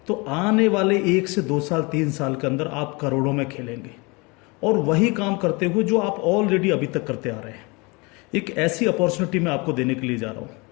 तो आने वाले 1 से 2 साल 3 साल के अंदर आप करोड़ों में खेलेंगे और वही काम करते हुए जो आप ऑलरेडी अभी तक करते आ रहे हैं। एक ऐसी अपॉर्चुनिटी मैं आपको देने के लिए जा रहा हूँ,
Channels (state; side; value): quieter; right; 27.4 dB